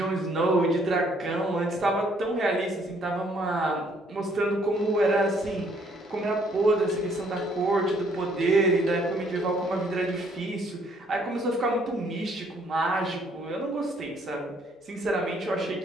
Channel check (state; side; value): normal; both; correlation 0.65